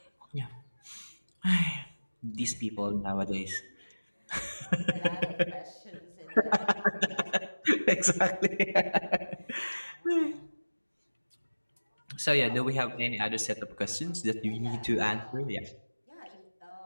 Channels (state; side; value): inverted; both; correlation -1.00